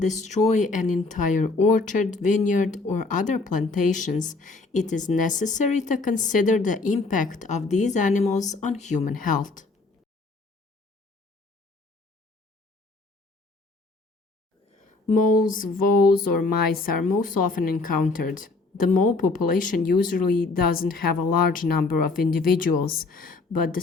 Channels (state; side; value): quieter; right; 3.7 dB